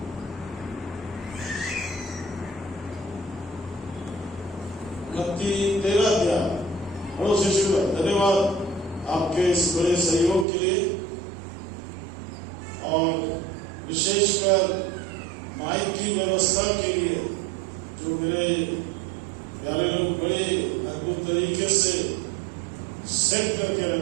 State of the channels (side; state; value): left; drops out; at 10.5 s